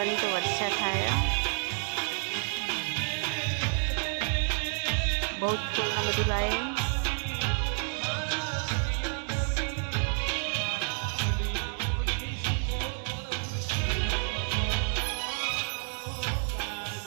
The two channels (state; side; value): silent; left; 58 dB below the other